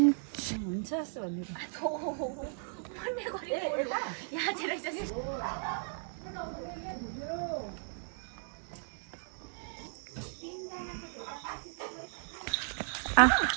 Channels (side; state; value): left; silent; digital silence